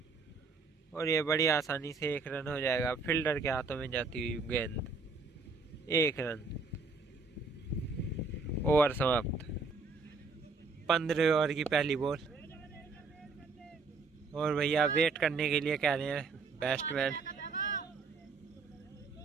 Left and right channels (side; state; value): left; quieter; 4.3 dB